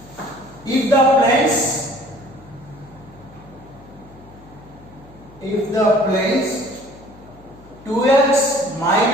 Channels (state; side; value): noise; left; hum, 23 dB below the sound